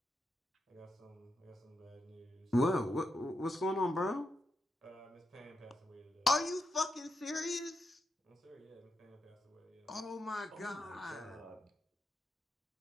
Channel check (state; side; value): normal; both; correlation 0.84